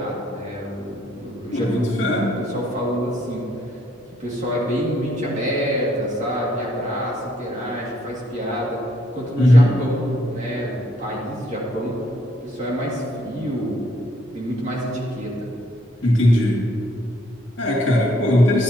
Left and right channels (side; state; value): both; normal; correlation 0.68